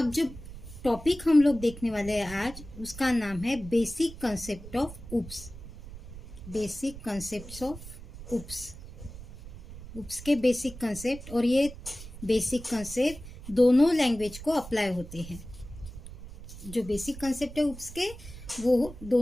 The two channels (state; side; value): noise; right; rumble, 14 dB below the sound